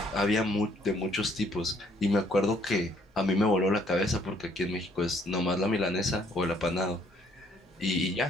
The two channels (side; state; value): both; normal; correlation 0.64